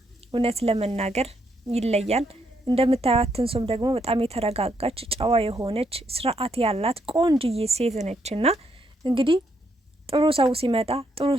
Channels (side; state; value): both; normal; correlation 0.76